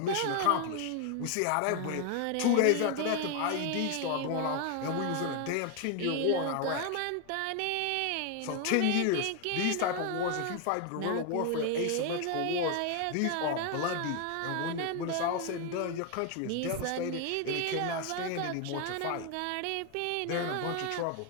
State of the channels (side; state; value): both; different; correlation 0.01